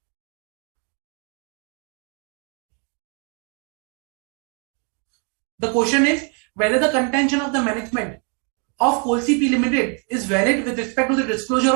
The question is whether the contention of the management of CP Limited is valid with respect to the disclosure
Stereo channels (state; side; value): quieter; left; 37.1 dB